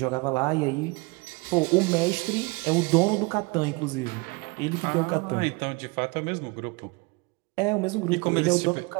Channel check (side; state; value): left; quieter; 27.0 dB